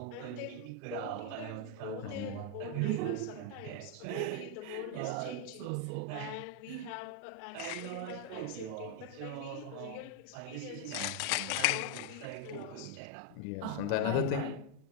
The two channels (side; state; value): both; different; correlation 0.01